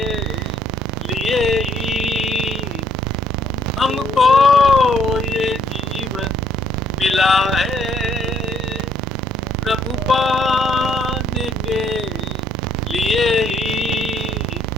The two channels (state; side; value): noise; right; rumble, 14 dB below the sound